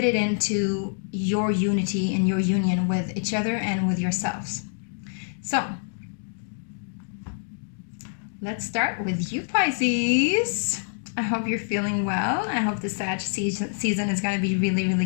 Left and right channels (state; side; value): silent; right; digital silence